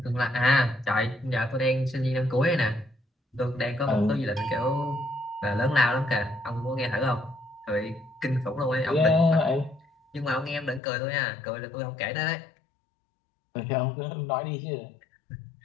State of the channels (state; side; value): drops out; right; at 10.8 s